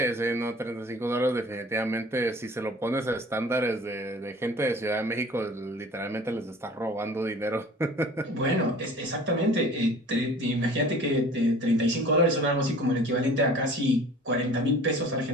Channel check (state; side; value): normal; both; correlation 0.45